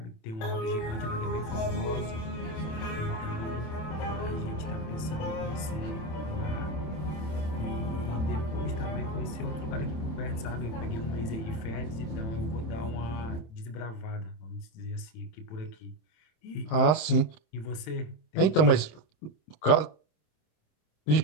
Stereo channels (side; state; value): right; late; 27 ms